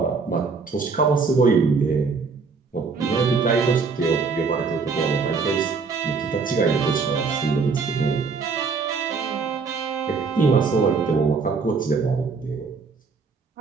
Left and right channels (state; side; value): quieter; left; 4.8 dB